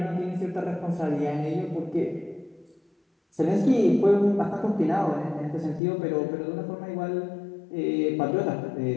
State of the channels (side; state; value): right; drops out; at 5.8 s